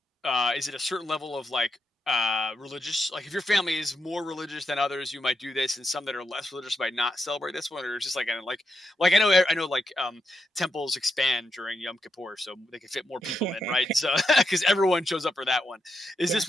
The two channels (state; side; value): normal; both; correlation 0.84